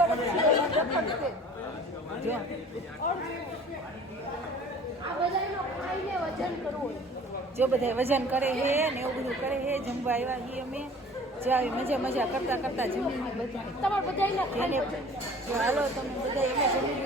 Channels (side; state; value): both; normal; correlation 0.47